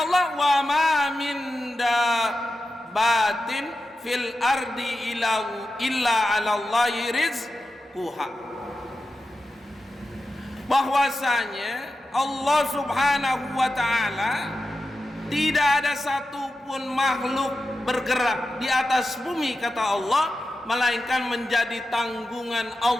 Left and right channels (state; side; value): normal; both; correlation 0.91